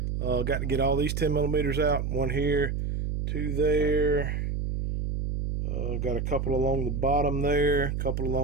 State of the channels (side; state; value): right; noise; hum, 2 dB below the sound